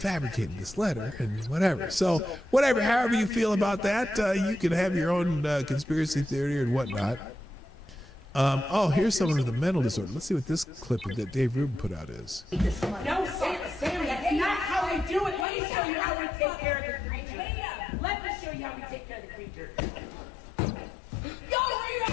this letter and whatever. So whatever, however you feel about that, you can have your own conspiracy theory and whatnot. Here's someone with a mental disorder. Let's see what this clip that Dave Rubin put out is. No, Sam, that's not how we do it. Let me show you how we take care of the creature. Let me show you how we take care of the creature. Go,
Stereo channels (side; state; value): right; drops out; at 15.5 s